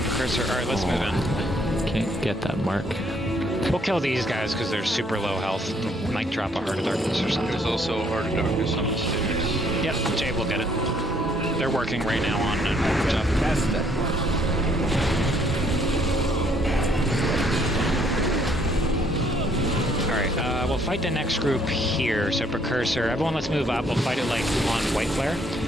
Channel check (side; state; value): both; normal; correlation 0.66